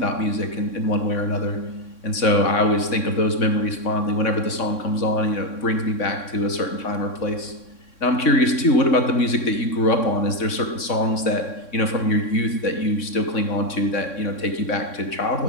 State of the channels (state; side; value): late; right; 3.6 ms